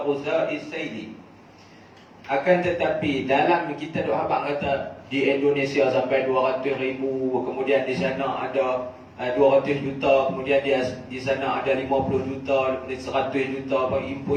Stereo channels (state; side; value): identical; both; correlation 1.00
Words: ghuza'is sayli. Akan tetapi dalam kita duk habaq kata di Indonesia sampai 200,000, kemudian di sana ada 200 juta, kemudian di sana ada 50 juta, 100 juta,